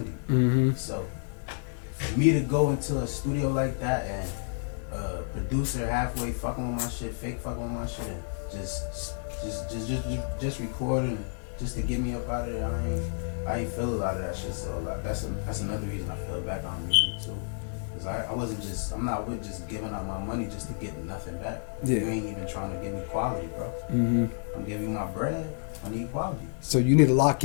So for me to go into a studio like that and producer halfway fucking with my shit, fake fucking with my shit, and just recording just to get me up out of there, I ain't feel a lot of that shit. So like, that's another reason I fell back on music too, because I'm not with just giving out my money just to get nothing back. Yeah. You ain't even trying to give me quality, bro. I'm giving you my bread. I need quality. So you need to lock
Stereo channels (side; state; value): right; silent; digital silence